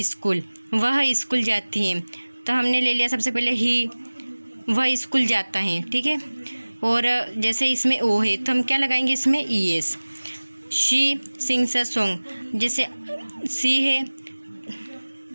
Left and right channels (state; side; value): inverted; both; correlation -1.00